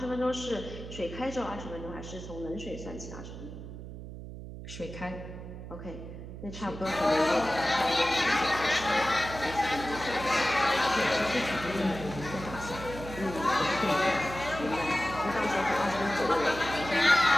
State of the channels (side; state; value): right; noise; hum, 11 dB below the sound